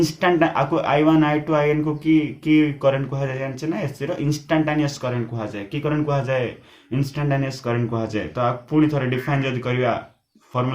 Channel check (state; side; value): identical; both; correlation 1.00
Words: आपको I1 I2 IN को की current कहा जाए जानछे ना SC रो instantaneous current कहा जाए की करंट कहा जाए इंस्टेंटेनियस करंट कहा जाए तो आप पुणी थोड़े डिफाइन जदि करिया